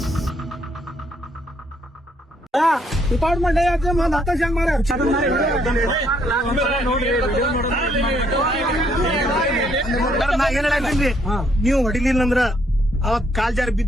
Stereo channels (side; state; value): both; normal; correlation 0.70